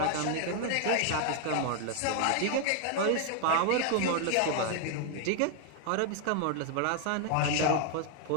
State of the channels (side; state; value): both; different; correlation 0.00